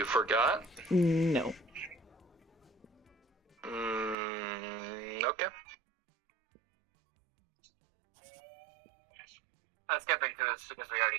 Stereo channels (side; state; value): left; drops out; at 4.2 s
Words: forgot? No. Okay. I'm skipping through this because we already